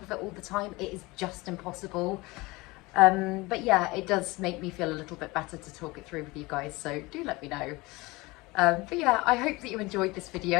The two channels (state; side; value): quieter; right; 22.6 dB